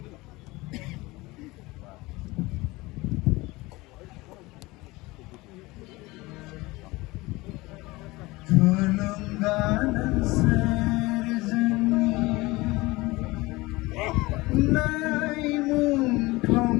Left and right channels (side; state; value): right; quieter; 21.5 dB